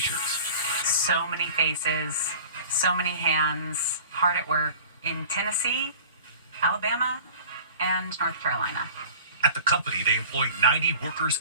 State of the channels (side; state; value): both; inverted; correlation -0.42